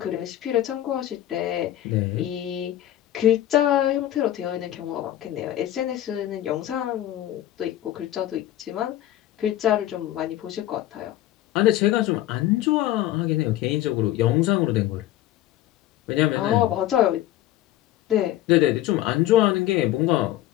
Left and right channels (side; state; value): right; quieter; 13.6 dB